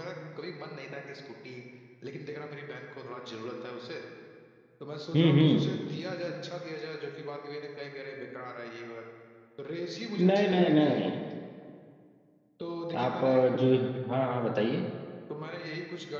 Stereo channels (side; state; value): both; identical; correlation 1.00